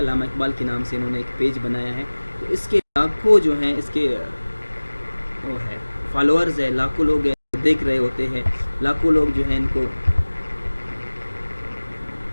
اقبال کے نام سے انہوں نے ایک پیج بنایا ہے. تو اس کے لاکھوں جو ہیں اس کے وہ ہے فالوورز ہے, لاکھوں لوگ دیکھ رہے ہوتے ہیں, لاکھوں لوگ جو ہیں ان کو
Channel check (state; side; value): inverted; both; correlation -1.00